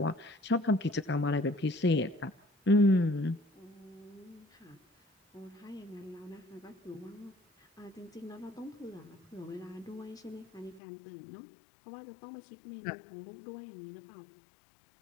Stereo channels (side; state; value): right; drops out; at 10.8 s